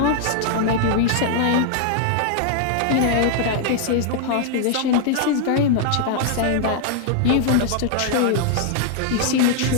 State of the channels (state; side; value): different; both; correlation -0.01